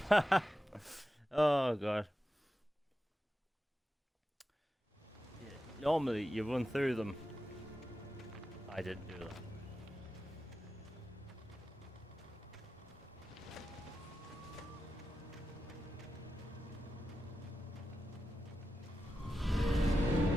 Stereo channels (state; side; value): normal; both; correlation 0.91